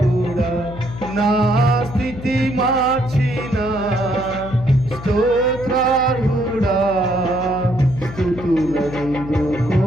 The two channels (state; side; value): noise; left; hum, 12 dB below the sound